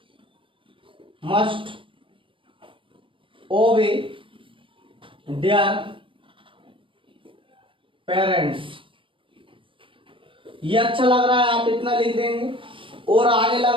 must obey their parents, ये अच्छा लग रहा है, आप इतना लिख देंगे। और आगे लग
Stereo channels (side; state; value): left; late; 0.25 ms